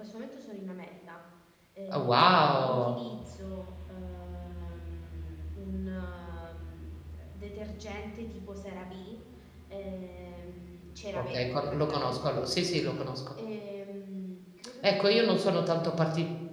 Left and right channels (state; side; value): identical; both; correlation 1.00